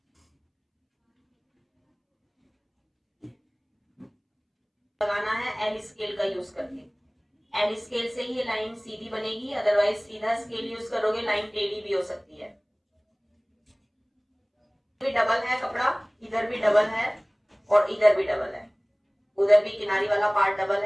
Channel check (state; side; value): identical; both; correlation 1.00